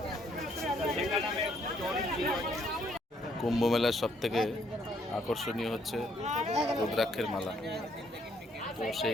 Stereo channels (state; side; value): normal; both; correlation 0.69